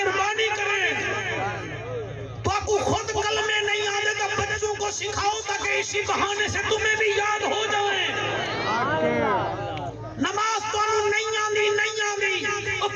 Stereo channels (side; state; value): both; identical; correlation 1.00